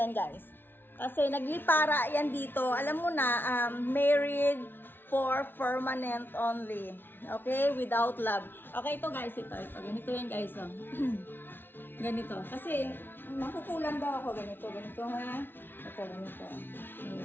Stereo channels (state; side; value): late; right; 0.10 ms